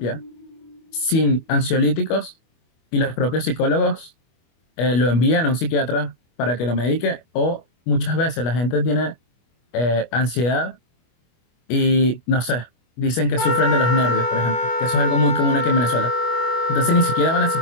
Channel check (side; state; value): right; late; 25 ms